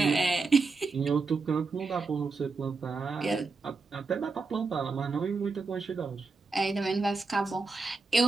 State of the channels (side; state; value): left; quieter; 4.1 dB